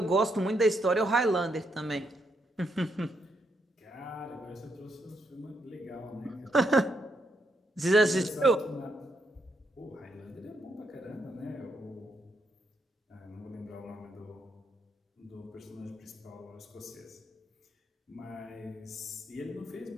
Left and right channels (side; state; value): both; normal; correlation 0.78